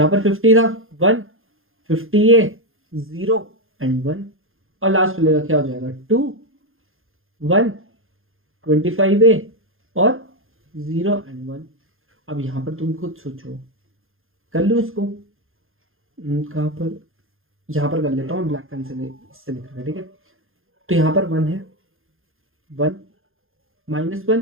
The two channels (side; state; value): left; late; 0.60 ms